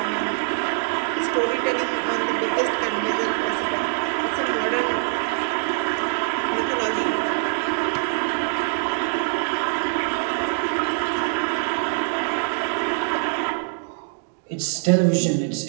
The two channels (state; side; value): silent; left; digital silence